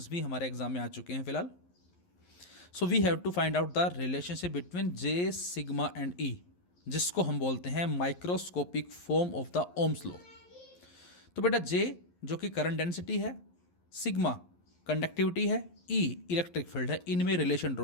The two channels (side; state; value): right; late; 11 ms